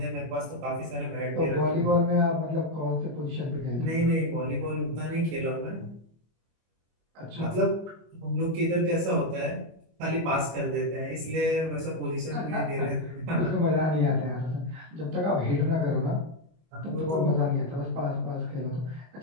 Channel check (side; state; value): left; late; 25 ms